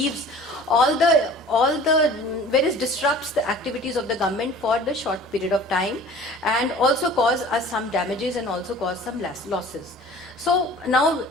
all where it disrupts the activities of the government for the short period of time, and also cause us some damages and also cause some losses. So now,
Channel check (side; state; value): both; normal; correlation 0.45